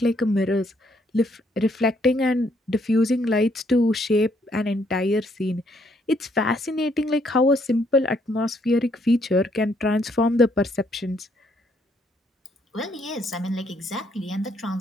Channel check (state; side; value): normal; both; correlation 0.70